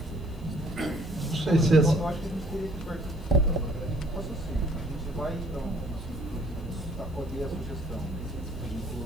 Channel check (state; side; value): noise; left; hiss, 29 dB below the sound